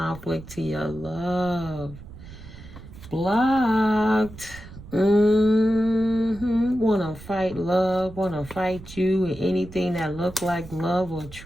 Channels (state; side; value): noise; right; rumble, 16 dB below the sound